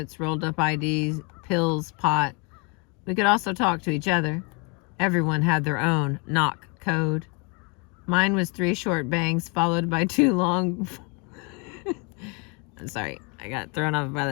rolled up IDs, pills, pot. We could also talk to each other. Everyone had their own knock code. Mine was 3 short bangs followed by 2 long... I'm sorry, I got thrown off by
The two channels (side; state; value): right; quieter; 32.6 dB